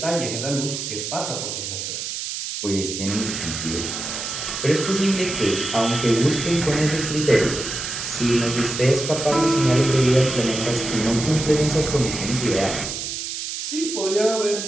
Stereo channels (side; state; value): right; noise; hiss, 5 dB below the sound